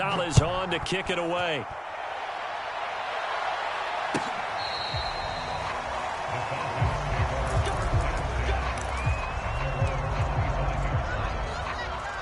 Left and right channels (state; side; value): identical; both; correlation 1.00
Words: on to kick it away.